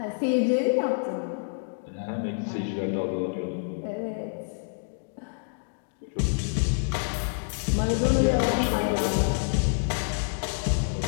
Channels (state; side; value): silent; right; digital silence